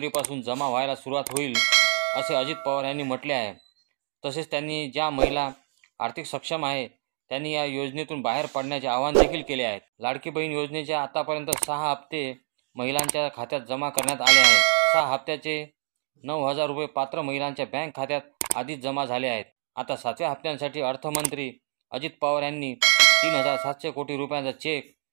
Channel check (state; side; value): silent; left; digital silence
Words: जमा व्हायला सुरुवात होईल असे अजित पवार यांनी म्हटले आहे। तसेच त्यांनी ज्या महिला आर्थिक सक्षम आहे त्यांनी या योजनेतून बाहेर पडण्याचे आवाहन देखील केले आहे। लाडकी बहीण योजनेचे आतापर्यंत 6 हप्ते महिलांच्या खात्यात जमा करण्यात आले आहेत। 6 हप्त्याचे 9000 रुपये पात्र महिलांच्या बँक खात्यात आधीच जमा झाले आहेत। आता 7व्या हप्त्यासाठी अर्थमंत्री अजित पवार यांनी 3700 कोटी रुपयांचा चेक